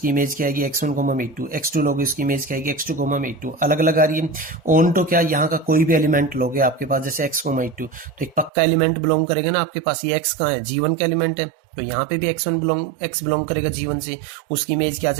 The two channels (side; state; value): left; drops out; at 8.5 s